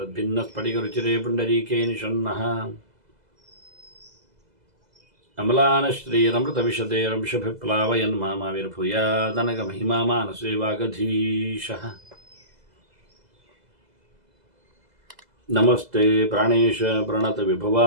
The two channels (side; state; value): left; late; 2.0 ms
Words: पुण्डरीके निषण्णः अमलानश्रीरमृतविशदे रंशभिप्लावयन् मामाविर्भूयादनगमहिमा मानसे वागधीशः नमस्ते प्राणेश प्रणत